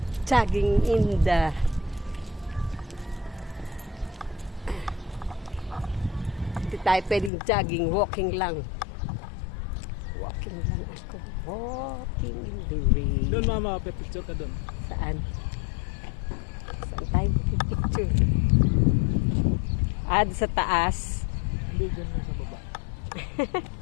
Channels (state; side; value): drops out; right; at 7.3 s